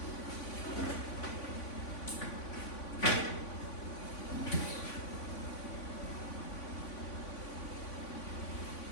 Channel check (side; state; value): right; late; 3.5 ms